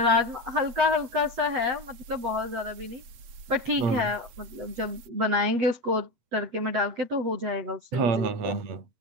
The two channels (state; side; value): late; left; 8.3 ms